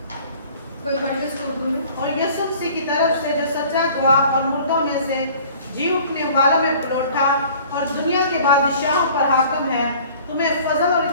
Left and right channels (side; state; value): both; inverted; correlation -0.49